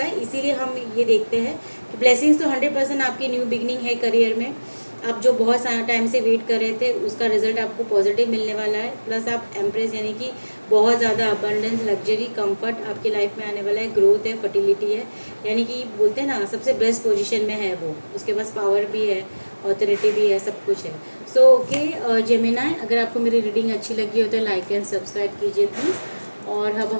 है, इसीलिए हम ये देखते हैं कि ब्लेसिंग्स तो 100% आपकी न्यू बिगनिंग है करियर में। आप जो बहुत सारा टाइम से वेट कर रहे थे उसका रिजल्ट आपको पॉजिटिव मिलने वाला है। प्लस आप एम्प्रेस यानी कि बहुत ज़्यादा अबंडेंस, लग्जरी, कंफर्ट आपकी लाइफ में आने वाला है। ग्रोथ है, फर्टिलिटी है, यानी कि बोलते हैं ना सबसे बेस्ट पोजीशन में है वो। उसके पास पावर भी है, ऑथोरिटी भी है, सब कुछ है। सो ओके जेमिनी, अगर आपको मेरी रीडिंग अच्छी लगी हो तो लाइक एंड सब्सक्राइब कीजिए प्लीज़। और अब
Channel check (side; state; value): both; inverted; correlation -1.00